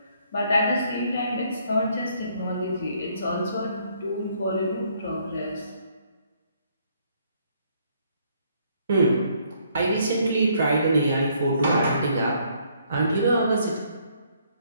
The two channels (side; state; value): both; inverted; correlation -0.67